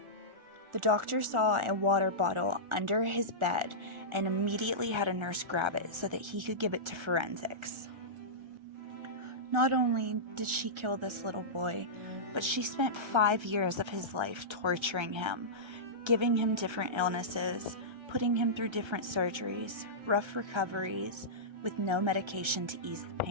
The doctor saw a water bottle under his bed and immediately had a nurse grab it so that he could give it to forensics. Not only did she kill this little boy, but she spent 5 years of his life torturing him, giving him different illnesses, putting him through different surgeries, rough recoveries, with no medication to ease the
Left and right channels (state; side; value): late; left; 1.3 ms